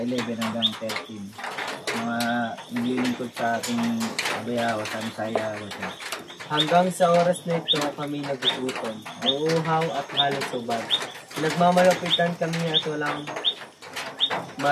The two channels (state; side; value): identical; both; correlation 1.00